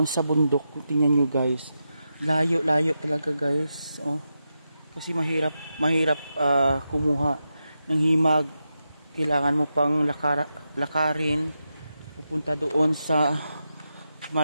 sa bundok. Tingnan nyo guys. Layo talaga guys. Oh. Kasi mahirap kumuha ng himag. Kailangan mo pang lakarin. Pupunta doon sa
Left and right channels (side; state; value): both; inverted; correlation -0.88